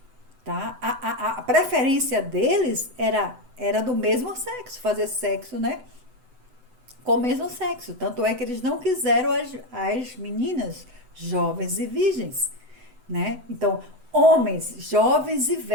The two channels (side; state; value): left; late; 8.0 ms